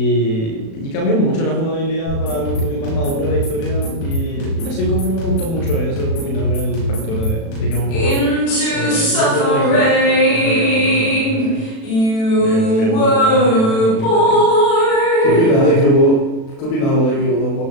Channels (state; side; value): late; right; 36 ms